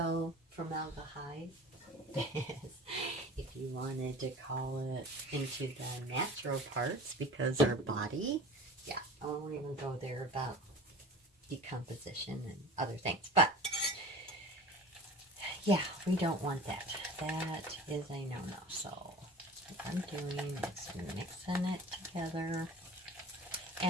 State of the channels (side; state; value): both; normal; correlation 0.39